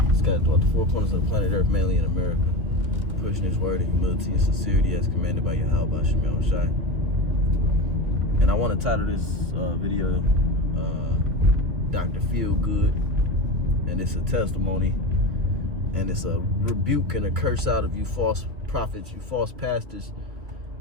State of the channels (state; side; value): late; left; 2.6 ms